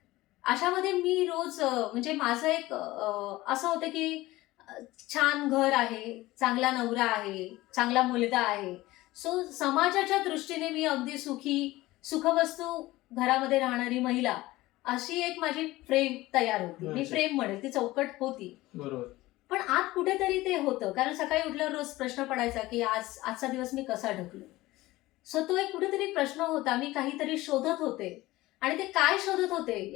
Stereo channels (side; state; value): right; quieter; 18.3 dB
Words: अशामध्ये मी रोज म्हणजे माझं एक असं होतं की छान घर आहे, चांगला नवरा आहे, चांगला मुलगा आहे, सो समाजाच्या दृष्टीने मी अगदी सुखवस्तू घरामध्ये राहणारी महिला अशी एक माझी फ्रेम तयार होती. मी फ्रेम म्हणेल, ती चौकट होती. बरोबर. पण आत कुठेतरी ते होतं, कारण सकाळी उठल्यावर रोज प्रश्न पडायचा की आजचा दिवस मी कसा ढकलो. सो तो एक कुठेतरी प्रश्न होता. मी काहीतरी शोधत होते आणि ते काय शोधत होते